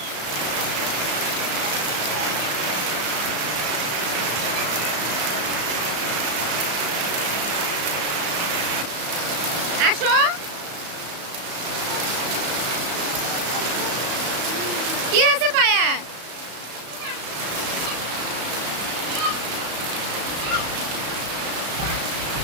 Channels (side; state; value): left; late; 34 ms